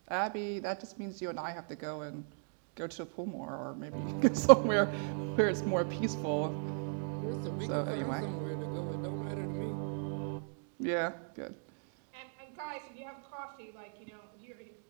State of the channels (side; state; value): left; silent; 53 dB below the other